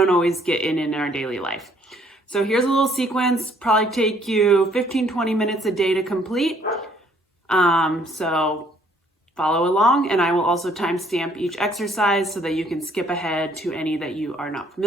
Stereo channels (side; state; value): both; normal; correlation 0.63